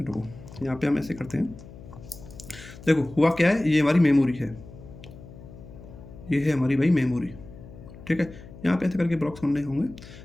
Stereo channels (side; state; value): left; noise; hum, 17 dB below the sound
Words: को। यहाँ पे हम ऐसे करते हैं, देखो हुआ क्या है, ये हमारी मेमोरी है, ये है हमारी भाई मेमोरी, ठीक है। यहाँ पे ऐसे करके ब्लॉक्स बनने होंगे।